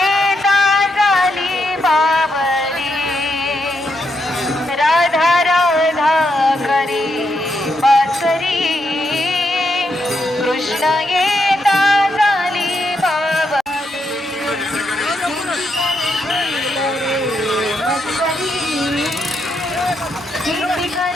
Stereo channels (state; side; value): normal; both; correlation 0.81